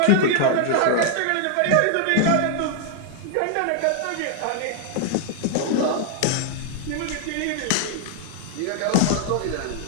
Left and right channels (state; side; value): different; both; correlation 0.00